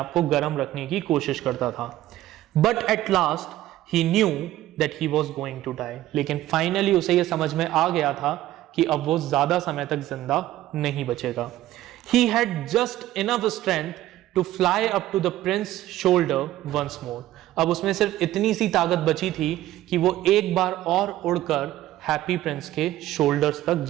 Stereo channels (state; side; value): quieter; left; 14.6 dB